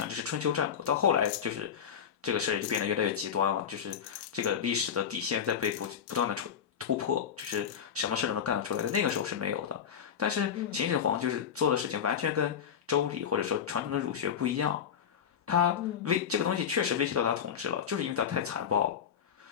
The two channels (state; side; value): quieter; right; 8.0 dB